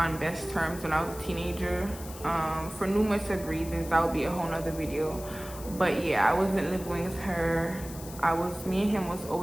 best terms when I was a teenager. For numerous of reasons. That would be a whole nother video. But yeah, I wasn't living with her. Me and him was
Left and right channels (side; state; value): left; noise; hiss, 15 dB below the sound